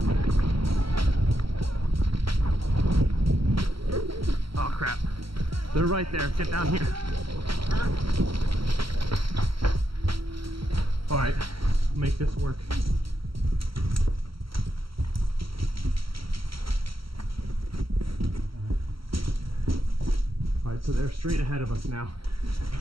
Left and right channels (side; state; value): left; late; 0.75 ms